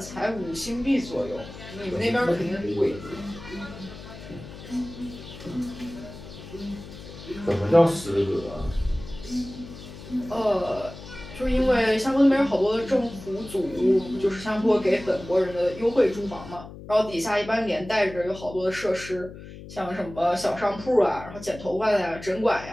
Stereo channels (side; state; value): left; noise; hum, 14 dB below the sound